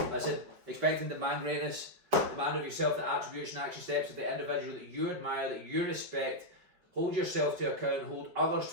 listen, expect and demand greatness. Demand of yourself the attributes and action steps of the individual that you admire, that you respect. Hold yourself to account, hold others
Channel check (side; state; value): left; late; 5.4 ms